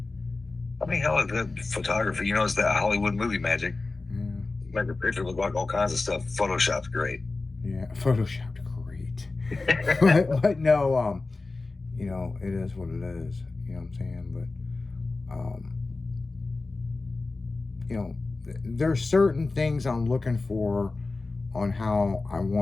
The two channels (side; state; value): right; quieter; 3.6 dB